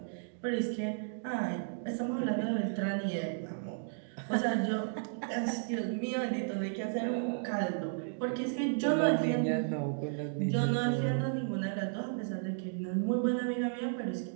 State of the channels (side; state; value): left; silent; digital silence